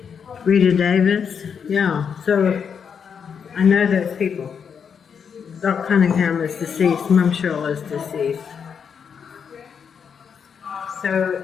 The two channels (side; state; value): right; quieter; 6.9 dB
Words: Rita Davis. Yeah, so I know those people. Doc Cunningham is deceased, Mum Shirley is deceased. So